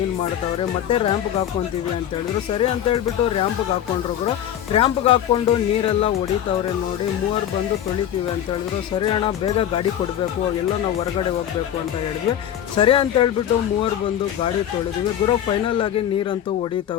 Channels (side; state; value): right; quieter; 10.5 dB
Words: ಮಾಡ್ತಾವ್ರೆ. ಮತ್ತೆ ರ್ಯಾಂಪ್ಗೆ ಹಾಕ್ಕೊಂತೀವಿ ಅಂತ ಹೇಳಿದ್ರು. ಸರಿ ಅಂತ ಹೇಳ್ಬಿಟ್ಟು ರ್ಯಾಂಪ್ಗೆ ಹಾಕ್ಕೊಂಡ್ರು ಗುರು. ರ್ಯಾಂಪ್ಗೆ ಹಾಕ್ಕೊಂಡು ನೀರೆಲ್ಲ ಹೊಡಿತಾವ್ರೆ ನೋಡಿ. ಮೂವರು ಬಂದು ತೊಳಿತೀವಿ ಅಂತ ಹೇಳಿದ್ರು. ಸರಿ ಅಣ್ಣ ಬೇಗ ಗಾಡಿ ಕೊಡಬೇಕು, ಎಲ್ಲ ನಾವು ಹೊರಗಡೆ ಹೋಗಬೇಕು ಅಂತ ಹೇಳಿದ್ವಿ. ಸರಿ ಅಂತ ಹೇಳ್ಬಿಟ್ಟು ಮೂವರು ಬಂದು ಗಾಡಿ ತೊಳೆದ್ವಿ ಗುರು. ಫೈನಲ್ ಆಗಿ ನೀರಂತೂ